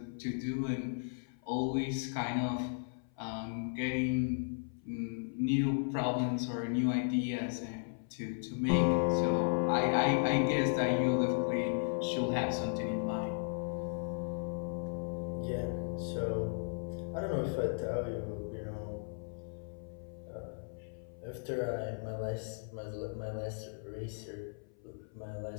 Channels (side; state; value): right; silent; 54 dB below the other